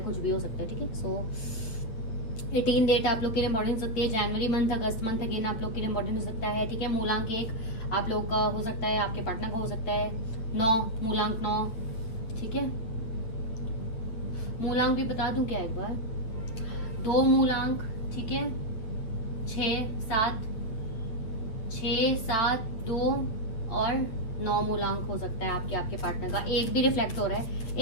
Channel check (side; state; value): right; late; 8.7 ms